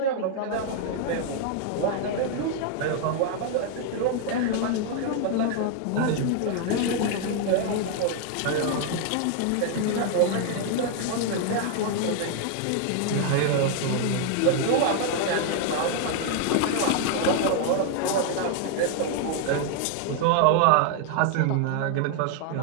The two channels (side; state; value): both; different; correlation 0.00